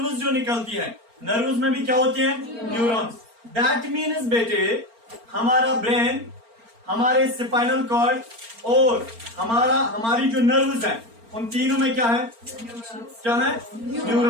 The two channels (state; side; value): late; left; 4.4 ms